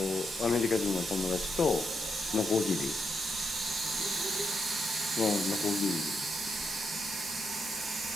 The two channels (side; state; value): both; normal; correlation 0.81